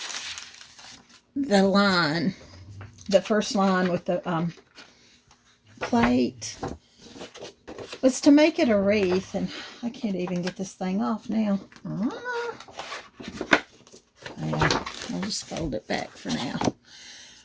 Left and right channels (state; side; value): identical; both; correlation 1.00